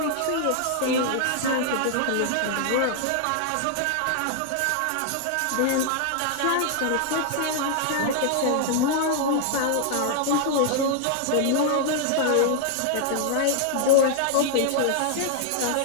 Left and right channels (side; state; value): both; different; correlation 0.00